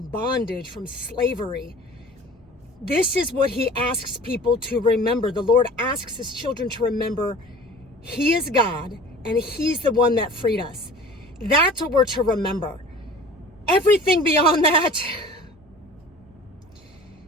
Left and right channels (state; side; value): normal; both; correlation 0.43